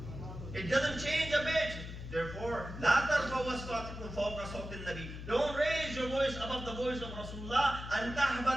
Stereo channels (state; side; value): noise; left; hum, 9 dB below the sound